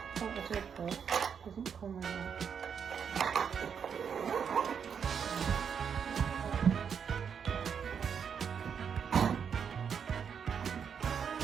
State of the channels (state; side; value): quieter; left; 7.1 dB